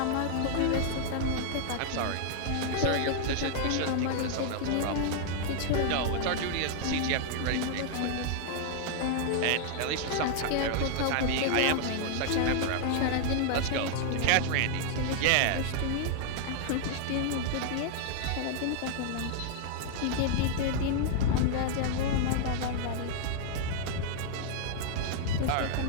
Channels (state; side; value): different; both; correlation -0.01